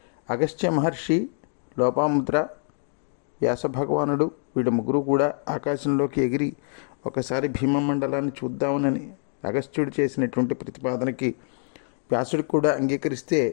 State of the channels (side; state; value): right; silent; digital silence